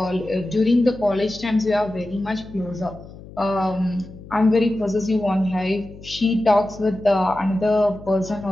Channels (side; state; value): left; noise; hum, 17 dB below the sound